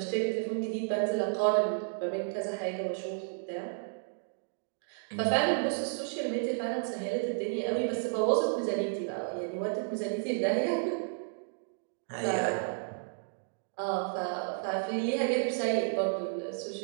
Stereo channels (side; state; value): left; silent; digital silence